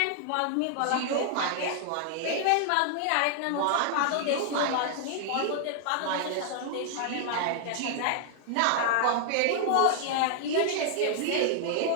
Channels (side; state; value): both; different; correlation -0.01